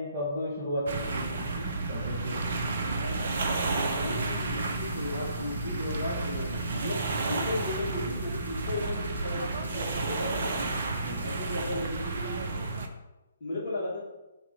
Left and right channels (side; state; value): both; inverted; correlation -0.67